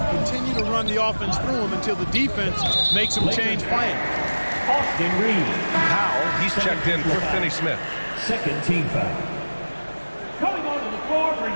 continue to run the offense through him until the defense makes him change plans. Austin Reeves. Powell, he's checked in for Finney-Smith. Second team foul. Coming onto the floor for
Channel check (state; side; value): inverted; both; correlation -1.00